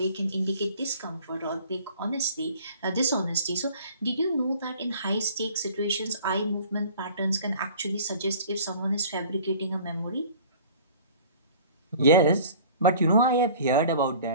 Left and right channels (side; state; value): both; inverted; correlation -0.47